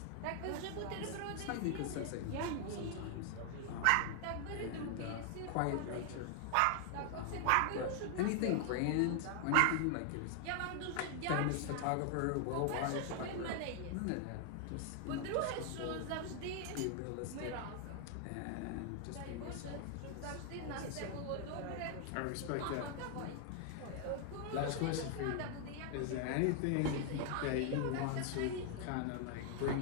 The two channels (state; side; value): different; both; correlation 0.00